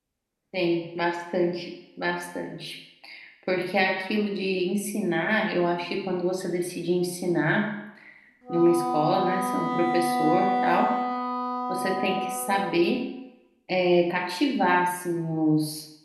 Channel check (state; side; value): identical; both; correlation 1.00